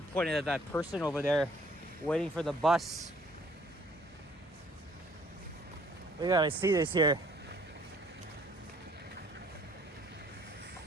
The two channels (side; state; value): both; normal; correlation 0.59